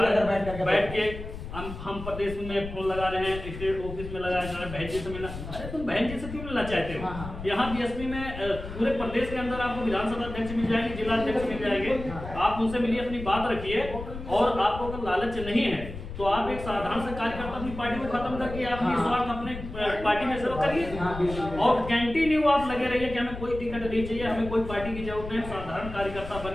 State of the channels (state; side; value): noise; left; rumble, 10 dB below the sound